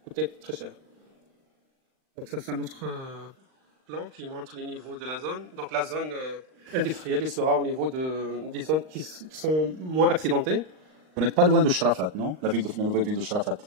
coûter très cher. Donc, ça, c'est un autre plan qui montre les niveaux de la zone. Donc, la zone industrielle il sera au niveau des zones qui sont moins accidentées. Vous n'êtes pas loin de Sharafat, non? La nouvelle ville de Sharafat,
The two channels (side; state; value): left; late; 39 ms